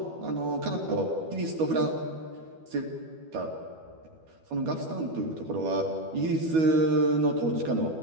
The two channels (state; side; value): late; left; 12 ms